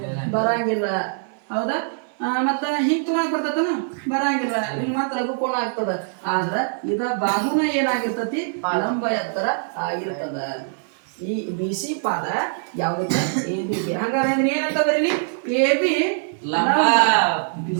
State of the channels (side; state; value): left; silent; 60 dB below the other